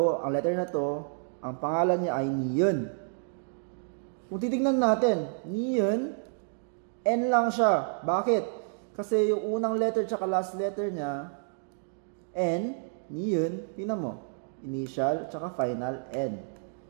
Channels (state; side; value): silent; left; digital silence